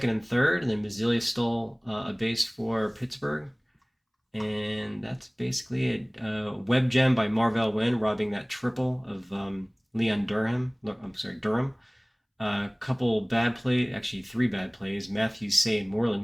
and third, and then Mazzilli stole a base for Pittsburgh. And that's basically it. Web gem by Marvell Wynn, robbing that triple of Leon Durham. Durham. Couple bad plays, actually 3 bad plays. Matthews, Say, and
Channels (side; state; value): both; identical; correlation 1.00